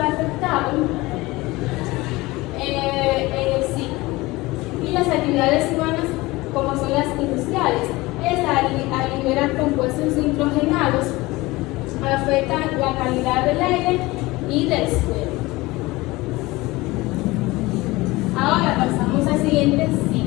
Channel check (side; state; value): right; quieter; 20.8 dB